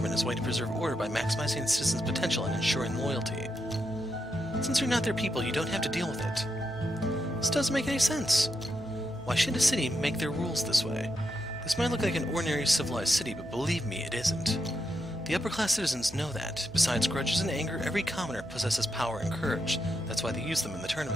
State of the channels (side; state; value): right; noise; hum, 19 dB below the sound